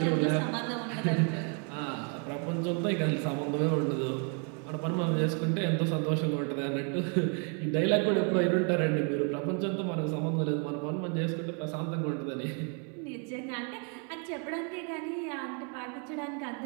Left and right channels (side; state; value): left; quieter; 37.1 dB